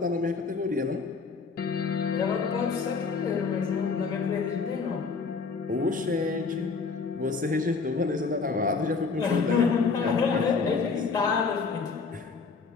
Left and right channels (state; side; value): quieter; right; 4.8 dB